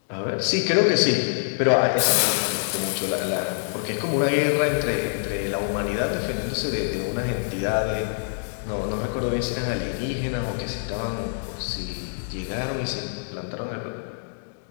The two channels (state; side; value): silent; right; digital silence